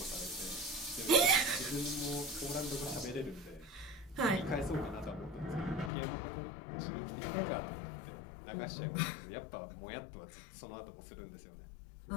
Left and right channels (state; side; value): drops out; right; at 5.9 s